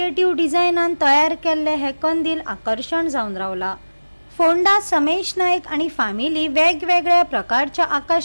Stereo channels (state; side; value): inverted; both; correlation -1.00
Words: डिझायनान तयार केल्ले हे कंदील आकर्षण जावन रावला। फोंडा समेश नायक आणि फॅमिली वेगवेगळ्या प्रकारच्या